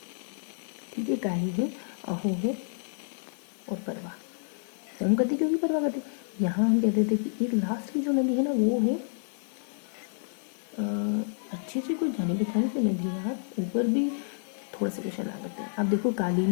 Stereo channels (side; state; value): right; silent; 58 dB below the other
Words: ठीक है, काली है, अहो है और परवा। होम करती क्योंकि परवा करती। यहाँ हम कहते थे कि एक लास्ट की जो नदी है ना, वो है अच्छी सी कोई जानी पहचानी सी नदी है यार। ऊपर भी थोड़ा सा क्वेश्चन आ सकते हैं। अब देखो काली